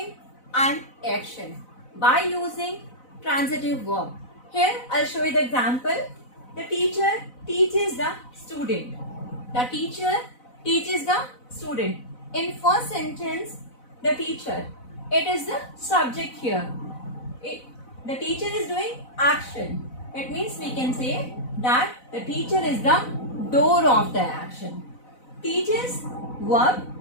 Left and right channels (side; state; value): right; late; 4.0 ms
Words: an action by using transitive verb. Here I'll show you the example. The teacher teaches the student. The teacher teaches the student. In first sentence, the teacher, it is the subject here. The teacher is doing action. It means we can say that the teacher is the door of the action. Teaches verb